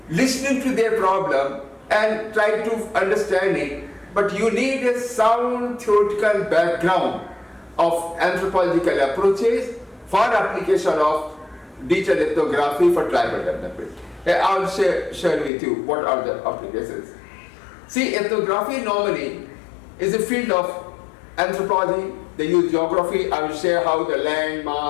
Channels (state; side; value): drops out; right; at 15.5 s